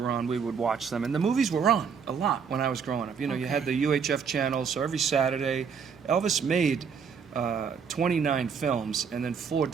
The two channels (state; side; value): quieter; left; 6.4 dB